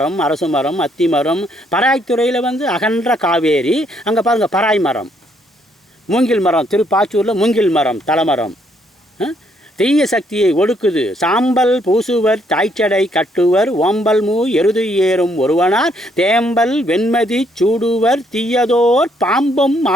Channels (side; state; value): both; normal; correlation 0.70